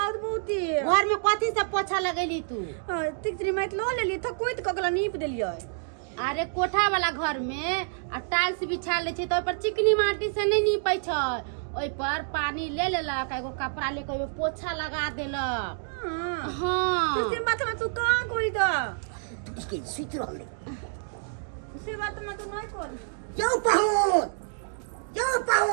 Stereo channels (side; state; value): left; silent; digital silence